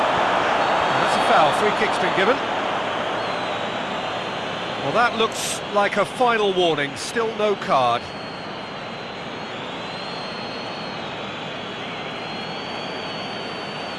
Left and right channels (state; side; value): identical; both; correlation 1.00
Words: That's a foul, free kick's been given. Well, that looks like a final warning, still no card.